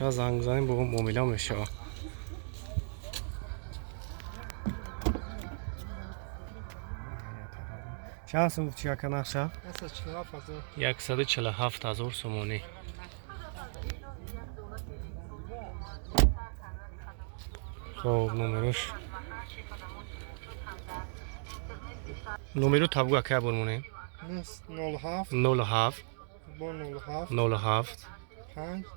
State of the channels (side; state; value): left; silent; digital silence